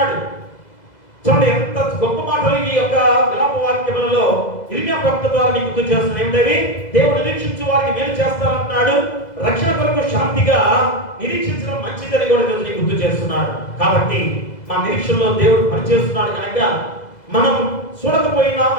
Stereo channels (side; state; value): right; late; 2.0 ms